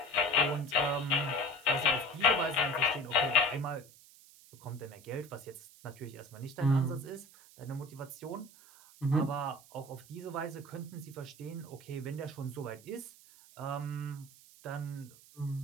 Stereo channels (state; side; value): noise; right; hiss, 23 dB below the sound